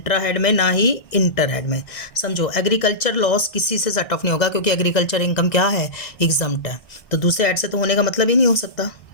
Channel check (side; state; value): right; late; 1.6 ms